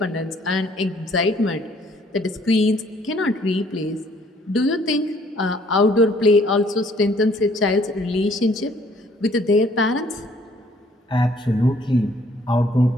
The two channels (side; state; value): both; normal; correlation 0.61